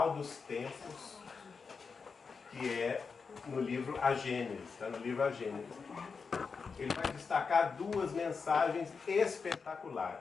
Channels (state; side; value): quieter; right; 5.2 dB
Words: dos Tempos, que é no livro A Gênese, está no livro A Gênese. Ele vai destacar duas mensagens